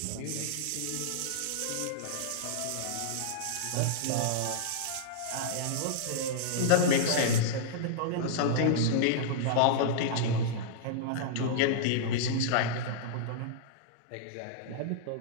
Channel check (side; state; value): both; different; correlation -0.02